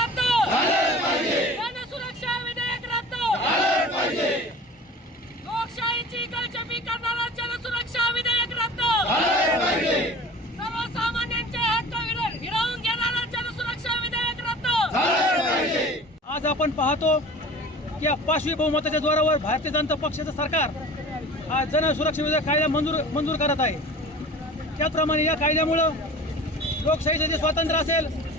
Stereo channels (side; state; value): both; normal; correlation 0.40